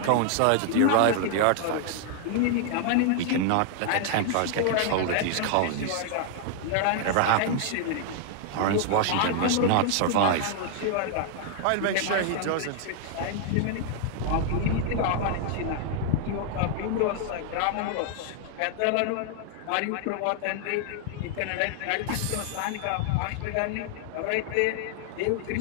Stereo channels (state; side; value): different; both; correlation 0.00